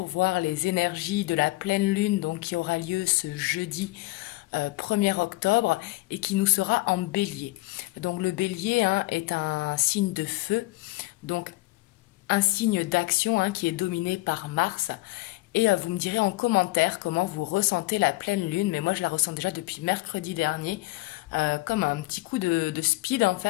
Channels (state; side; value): quieter; right; 20.7 dB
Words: voir les énergies de la pleine lune donc, qui aura lieu ce jeudi 1er octobre et qui nous sera en bélier. Donc le bélier est un signe de feu, donc un signe d'action qui est dominé par Mars. Et vous me direz en commentaire comment vous ressentez la pleine lune, mais moi je la ressens déjà depuis mercredi dernier. Comme un petit coup de speed en